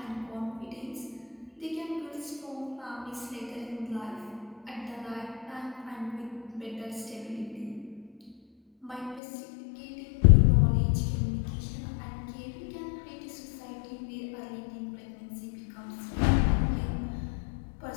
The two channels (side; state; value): right; drops out; at 9.2 s